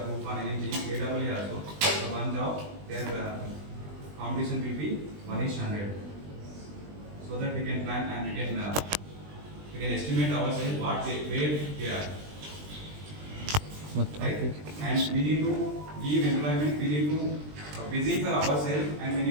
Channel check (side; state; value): left; late; 20 ms